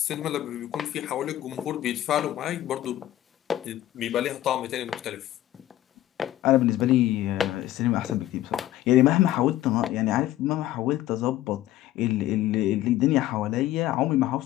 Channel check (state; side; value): quieter; right; 13.9 dB